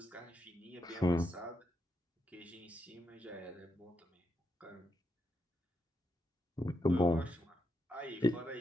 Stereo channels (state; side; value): normal; both; correlation 0.82